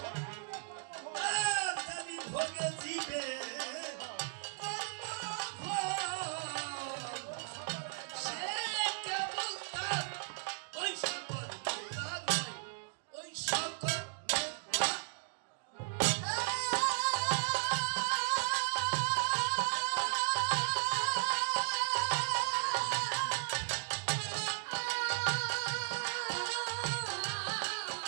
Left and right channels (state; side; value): silent; left; digital silence